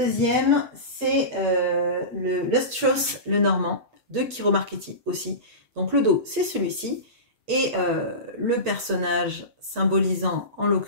c'est le Lustrous Lenormand de Kiro Marchetti aussi. Donc le dos, c'est celui-ci. Et le personnage symbolisant, en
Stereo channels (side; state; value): left; late; 8.2 ms